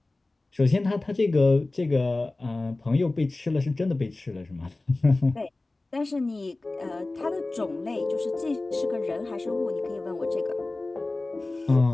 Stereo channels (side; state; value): right; quieter; 3.0 dB